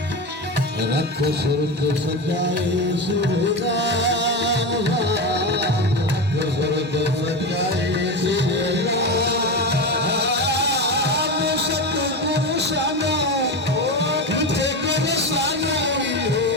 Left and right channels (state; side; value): normal; both; correlation 0.19